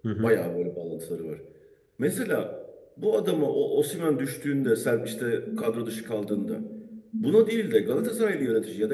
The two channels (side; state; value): both; identical; correlation 1.00